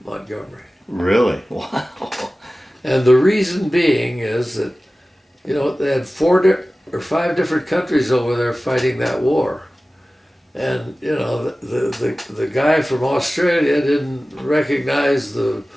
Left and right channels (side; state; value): both; normal; correlation 0.97